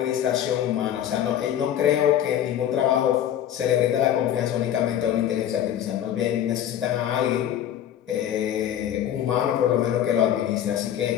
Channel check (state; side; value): quieter; right; 10.7 dB